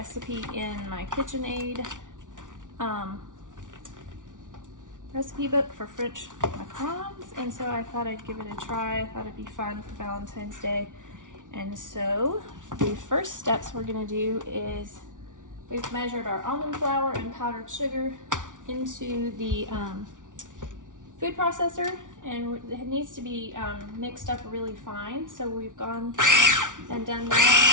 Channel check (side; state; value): left; late; 0.87 ms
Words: in my KitchenAid recipe book for French Macrons, and so I thought I'd give it a try. I thought it'd be fun for Valentine's Day. And so the first steps we're going to do is we've measured our almond flour and powdered sugar into the food processor, and it needs to be mixed up really fine. So we've gone and done